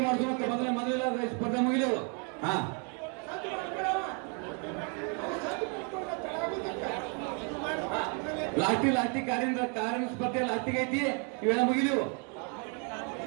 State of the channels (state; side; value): quieter; left; 37.8 dB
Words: ಮಾಡ್ಸೋಣ ಮೊದಲ ಸ್ಪರ್ಧೆ ಮುಗಿದೆವು ಹಾ ಲಾಸ್ಟಿ ಕಾರಿನ ಸ್ಪರ್ಧೆ ಲಾಸ್ಟಿಗೆ ಐತಿ ಇವೆಲ್ಲ ಮುಗಿದೆವು